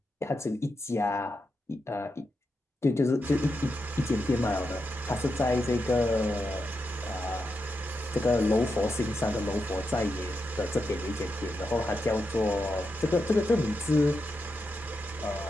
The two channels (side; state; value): both; normal; correlation 0.86